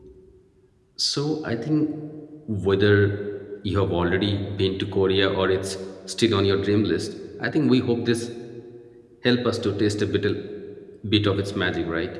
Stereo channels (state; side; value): identical; both; correlation 1.00